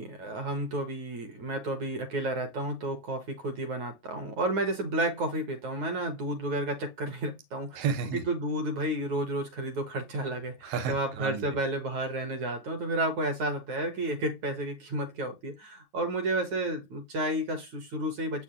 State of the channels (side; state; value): left; late; 9.4 ms